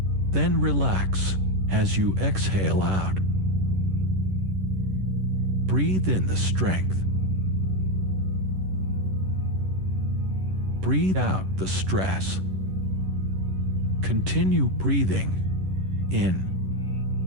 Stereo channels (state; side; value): late; left; 11 ms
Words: Then relax as you exhale out. Breathe in the strength. Breathe out the stress. Continue breathing in